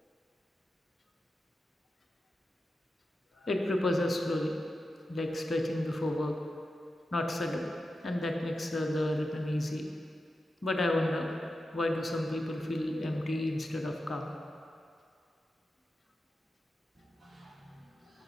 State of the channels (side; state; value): both; normal; correlation 0.91